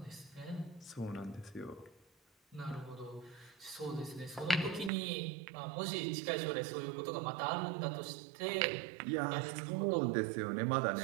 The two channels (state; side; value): drops out; left; at 4.9 s